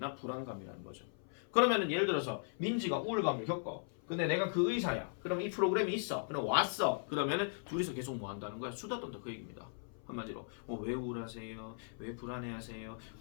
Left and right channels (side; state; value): right; silent; 52 dB below the other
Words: 불안감이라는 거죠. 그러면은 예를 들어서 민지가 우울감을 겪어. 근데 내가 그 의사야. 그럼 이 프로그램이 있어. 그럼 왔어. 그러면은 둘이서 계속 뭐 한다는 거야? 수다 떤다 그 얘기입니다. 한마디로 왜 우울하세요? 왜 불안해하세요?